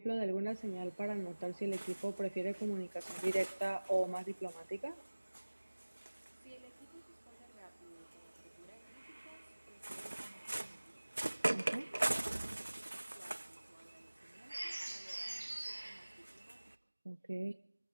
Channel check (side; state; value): both; inverted; correlation -1.00